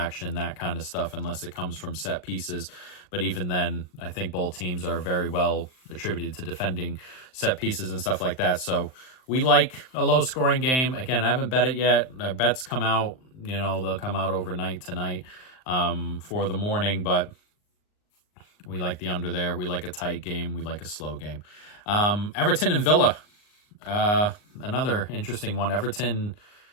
that kind of stuff, unless it comes from set pieces. But even then, I think both teams are very well attributed to defending set pieces and stuff like that. So we like a low-scoring game. Again, I haven't bet it yet. Our bets come out, they'll come out overnight tonight for the morning, but we like the under there. We like a tight game. We like a slow game. Everton and Villa, another interesting one. Everton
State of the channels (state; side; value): late; right; 39 ms